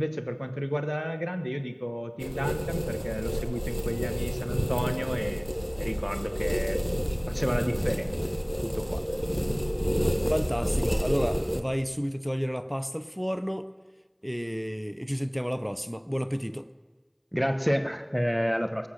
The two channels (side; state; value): both; identical; correlation 1.00